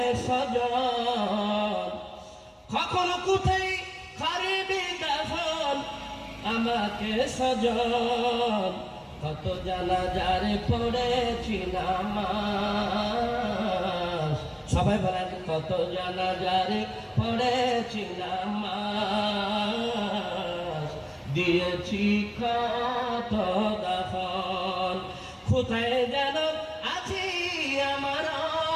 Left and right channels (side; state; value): both; identical; correlation 1.00